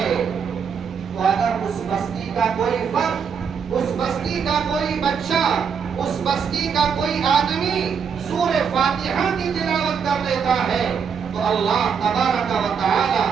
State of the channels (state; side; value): quieter; left; 6.6 dB